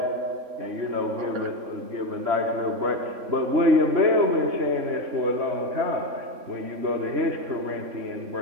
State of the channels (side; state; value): left; late; 3.6 ms